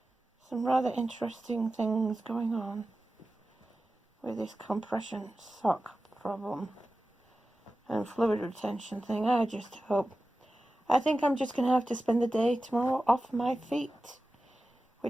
rather interesting things going on with this compression sock problem and fluid retention thing. I think I'm just going to have to spend the day tomorrow off my feet,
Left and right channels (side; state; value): both; normal; correlation 0.94